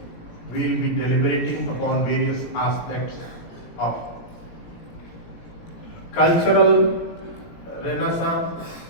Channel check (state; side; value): late; right; 17 ms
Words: we will be deliberating upon various aspects of cultural renaissance,